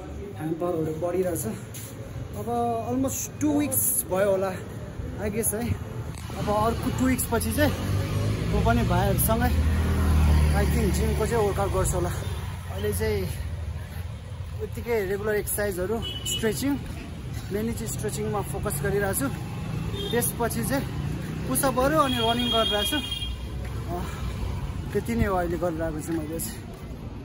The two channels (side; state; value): both; identical; correlation 1.00